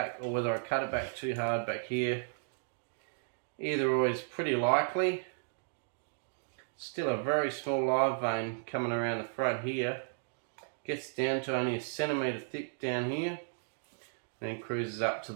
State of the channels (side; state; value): left; silent; digital silence